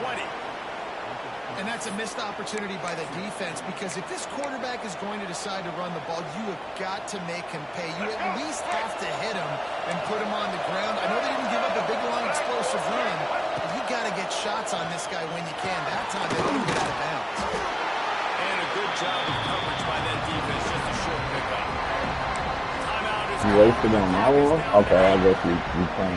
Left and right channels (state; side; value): identical; both; correlation 1.00